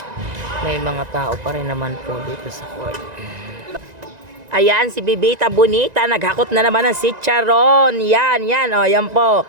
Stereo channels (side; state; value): left; late; 1.9 ms